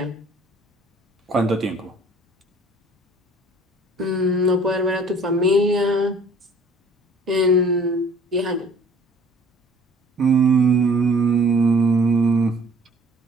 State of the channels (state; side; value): normal; both; correlation 0.53